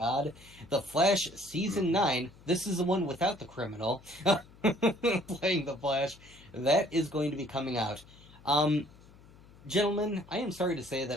The Flash Season 9, this is the one without the criminal playing the Flash. That is going to be coming out. Gentlemen, I am sorry to say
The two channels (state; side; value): noise; left; hum, 23 dB below the sound